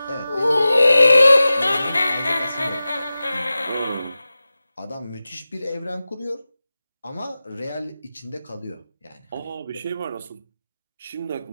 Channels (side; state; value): both; inverted; correlation -0.95